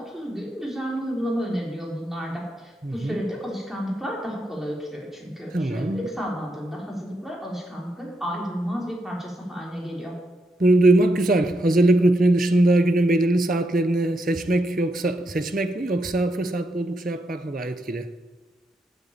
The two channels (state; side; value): normal; both; correlation 0.81